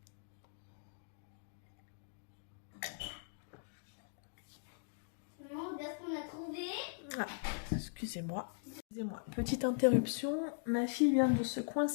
Ah, excusez-moi. Petite interruption, ma fille vient de se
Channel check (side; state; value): right; silent; digital silence